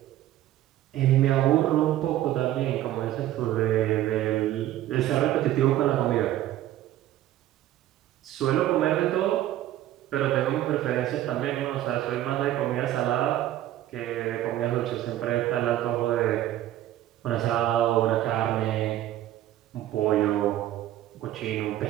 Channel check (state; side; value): quieter; left; 13.5 dB